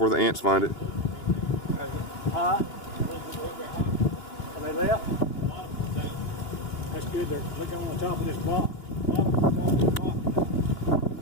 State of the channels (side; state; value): right; late; 2.9 ms